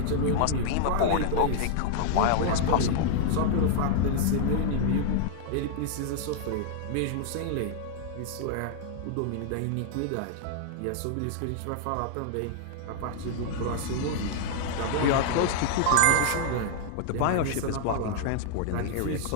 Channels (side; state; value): both; different; correlation 0.00